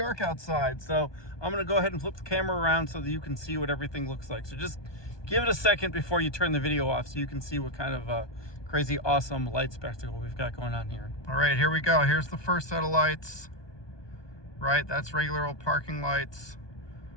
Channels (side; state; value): right; late; 1.2 ms